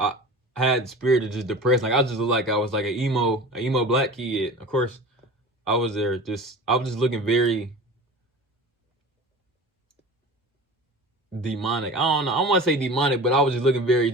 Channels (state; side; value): normal; both; correlation 0.36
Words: had the spirit of just depressed. Like, I just looked like I was like an emo black kid. Of course, I was there I was just looking very demonic. I don't know. I don't want to say demonic, but I was just looking very